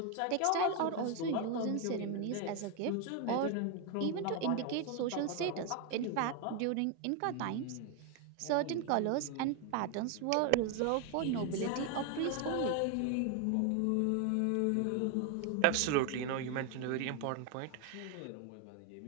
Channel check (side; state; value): both; different; correlation 0.01